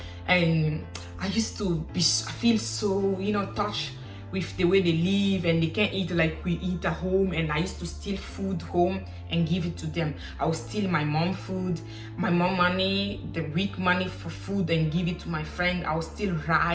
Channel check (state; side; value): identical; both; correlation 1.00